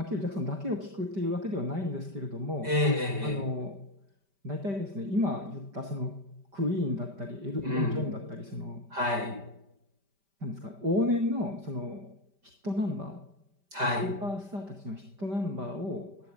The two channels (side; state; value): left; late; 5.1 ms